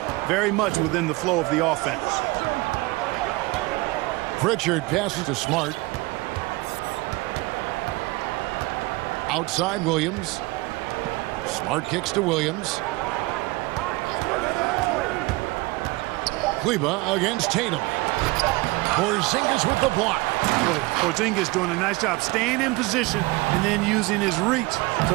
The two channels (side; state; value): left; quieter; 22.7 dB